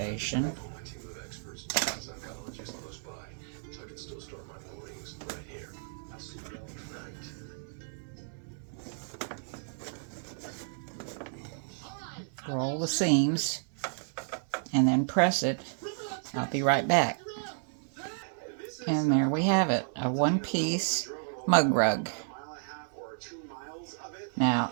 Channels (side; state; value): left; silent; 56 dB below the other